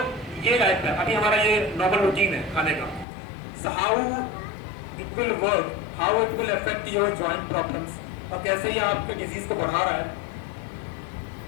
ये लाइफ है, अभी हमारा ये नॉर्मल रूटीन है खाने का। So how it will work, how it will affect your joint problems, और कैसे ये आपके डिजीज को बढ़ा रहा है,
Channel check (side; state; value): right; drops out; at 3.1 s